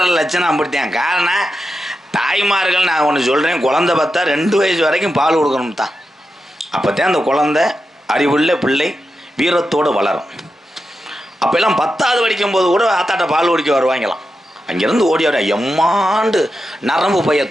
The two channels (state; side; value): normal; both; correlation 0.89